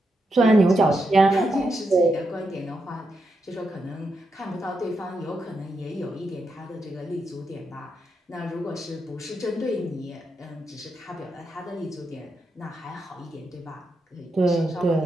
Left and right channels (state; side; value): normal; both; correlation 0.84